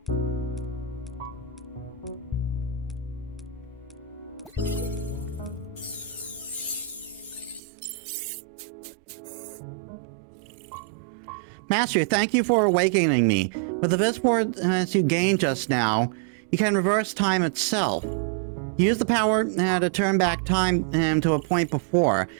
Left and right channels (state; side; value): drops out; left; at 7.6 s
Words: Master, thank you for awakening me. With the Viz force you gained just now, you can reverse time itself. Use the power to turn back time to a point before.